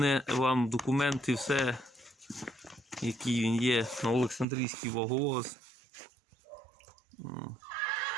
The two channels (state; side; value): drops out; left; at 4.5 s